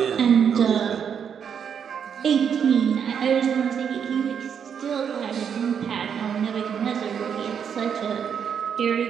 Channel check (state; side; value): quieter; left; 7.6 dB